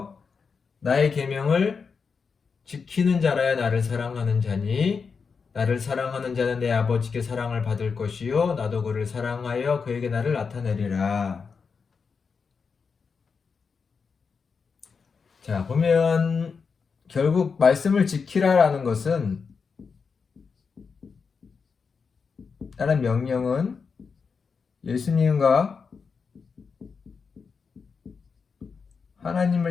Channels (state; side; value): quieter; right; 5.4 dB